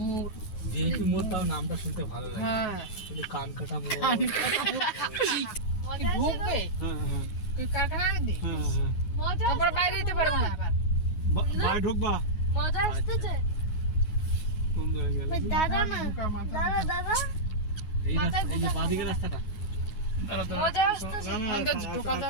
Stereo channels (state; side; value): late; right; 9.5 ms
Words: ভিআইপি মোড়, তাও নামটা শুনতে ভালো লাগে। হ্যাঁ কিন্তু কানকাটা মোড় কি ঢুকবে হ্যাঁ হ্যাঁ তুই কারখানা দি হ্যাঁ হ্যাঁ তারপর বাইরে যেতে পারবো না আবার বাইরে ঢুকবা মজা আসতেছে কোন জায়গায় গেলে দাদা না দাদা দাদা এই রাস্তা, এই যে বাঁদিকে রাস্তাটা মজা আসতেছে অন্তত ঢোকা